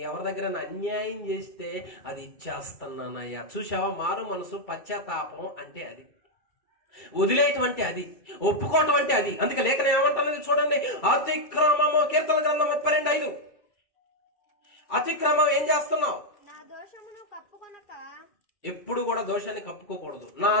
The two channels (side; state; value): right; late; 2.3 ms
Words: ఎవరి దగ్గర అన్యాయం చేస్తే అది ఇచ్చేస్తున్నానయ్యా. చూసావా? మారు మనసు, పశ్చాత్తాపం అంటే అది, వదిలేటువంటి అది, ఒప్పుకోవటం అంటే అది. అందుకే లేఖనం ఏమంటున్నది చూడండి. అతిక్రమము, కీర్తన గ్రంథం 32:5. అతిక్రమం ఏం చేస్తున్నావు? ఎప్పుడు కూడా దోషాన్ని కప్పుకోకూడదు. నా